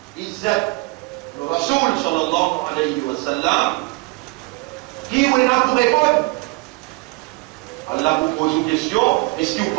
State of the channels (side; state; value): left; quieter; 25.3 dB